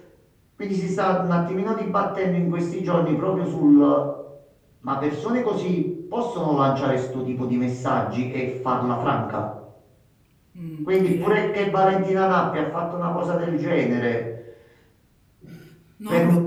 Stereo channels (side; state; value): both; identical; correlation 1.00